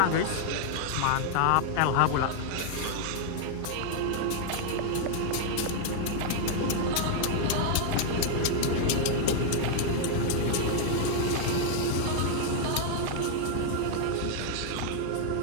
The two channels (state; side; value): different; both; correlation 0.00